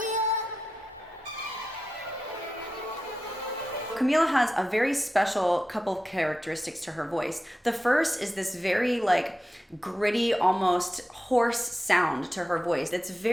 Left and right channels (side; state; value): both; normal; correlation 0.91